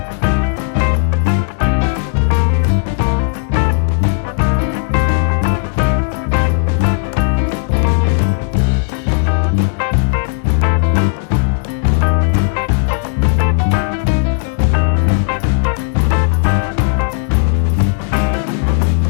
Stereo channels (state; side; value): silent; right; 61 dB below the other